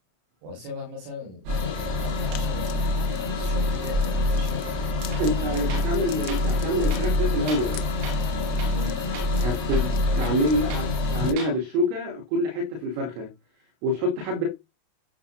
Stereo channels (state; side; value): late; left; 32 ms